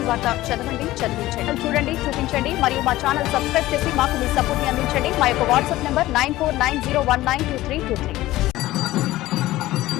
వార్త చదవండి, చదివించండి, చూడండి, చూపించండి మరియు మా ఛానల్ సబ్స్క్రైబ్ చేసి మాకు మీ సపోర్ట్ ని అందించండి. మా యొక్క వాట్సాప్ నంబర్ 9490192323.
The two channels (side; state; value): right; quieter; 16.6 dB